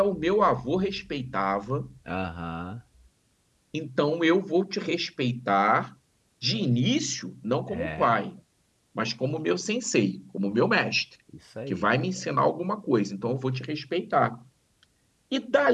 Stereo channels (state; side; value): identical; both; correlation 1.00